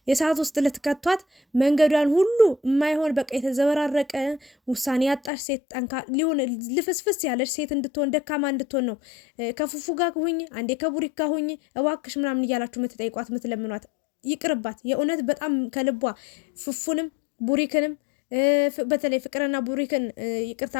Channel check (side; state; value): right; drops out; at 5.3 s